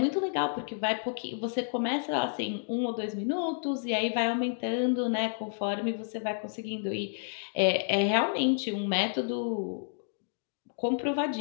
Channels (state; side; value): silent; right; digital silence